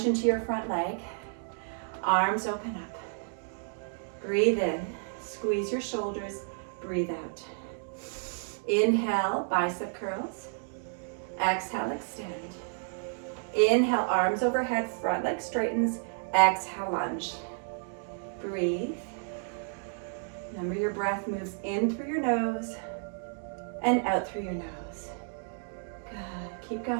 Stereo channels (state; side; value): silent; left; 57 dB below the other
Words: into your front leg. Arms open up. Breathe in. Squeeze your shoulders. Breathe out. Inhale, bicep curls. Exhale, extend. Inhale, arms overhead, front leg straightens. Exhale, lunge. Breathe. Remember your breath moves in through your nose and out through your nose. Good. Keep